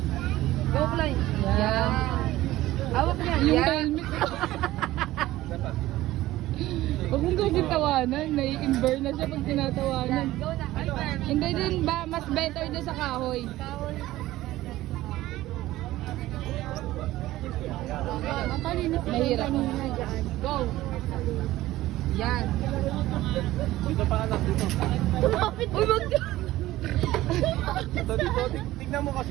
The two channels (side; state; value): left; quieter; 16.2 dB